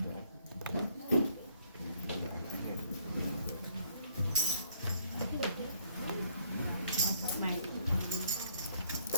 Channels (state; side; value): inverted; both; correlation -0.65